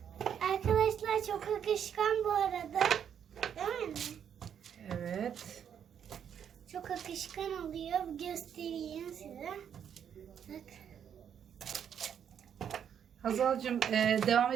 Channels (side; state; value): left; quieter; 8.5 dB